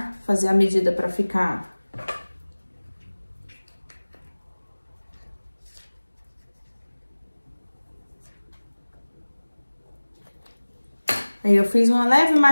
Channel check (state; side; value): inverted; both; correlation -1.00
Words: fazer a medida pra ficar... Aí, eu fiz uma leve